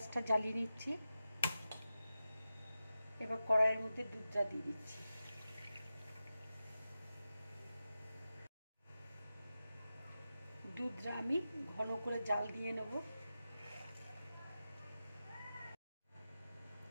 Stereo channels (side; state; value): both; inverted; correlation -0.93